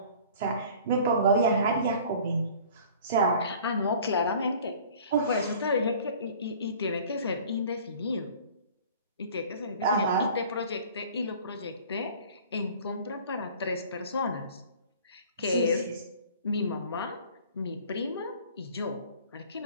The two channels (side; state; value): both; inverted; correlation -0.47